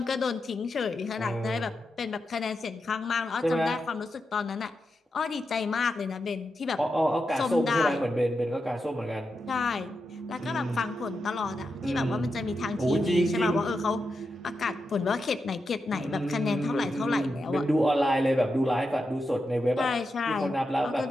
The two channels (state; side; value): normal; both; correlation 0.87